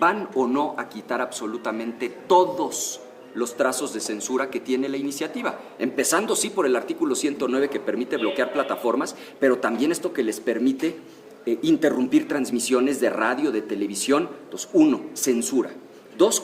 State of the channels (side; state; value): both; identical; correlation 1.00